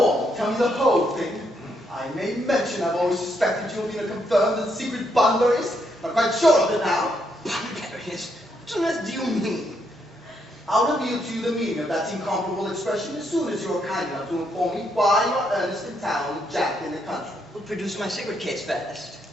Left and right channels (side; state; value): both; normal; correlation 0.76